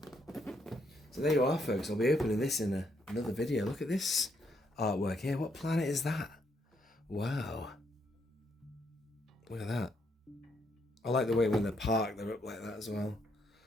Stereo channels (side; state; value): both; normal; correlation 0.74